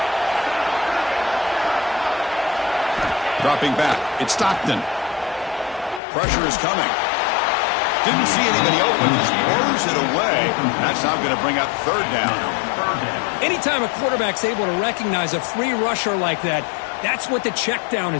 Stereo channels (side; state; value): right; drops out; at 6.0 s